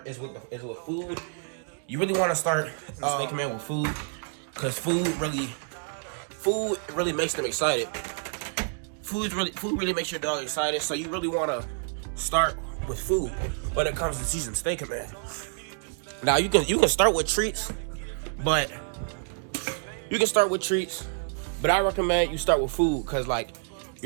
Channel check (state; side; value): silent; left; 59 dB below the other